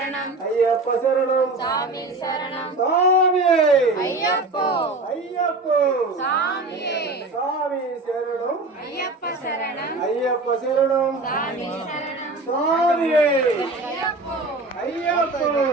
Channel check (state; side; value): quieter; left; 3.2 dB